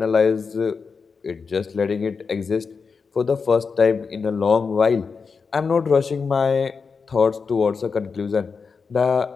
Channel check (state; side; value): quieter; right; 5.2 dB